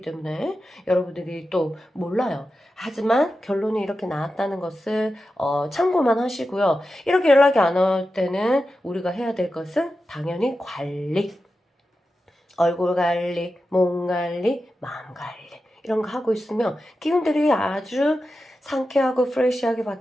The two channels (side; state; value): both; normal; correlation 0.91